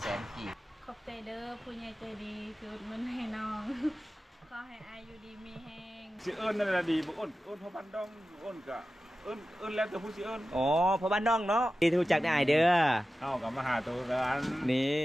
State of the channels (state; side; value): normal; both; correlation 0.94